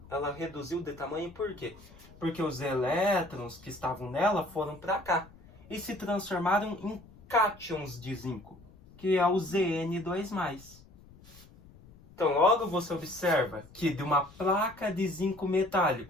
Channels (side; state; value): left; noise; rumble, 23 dB below the sound